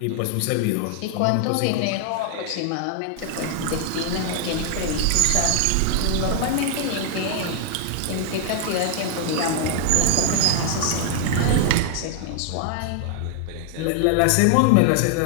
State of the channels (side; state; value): both; different; correlation 0.00